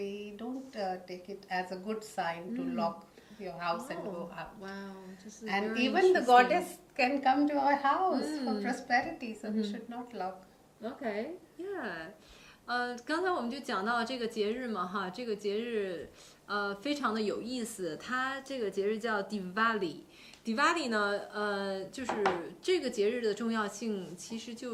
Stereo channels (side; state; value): both; identical; correlation 1.00